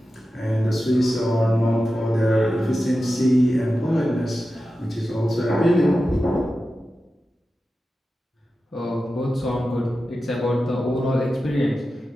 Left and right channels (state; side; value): normal; both; correlation 0.93